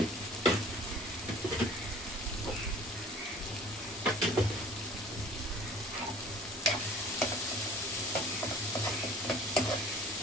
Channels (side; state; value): both; normal; correlation 0.48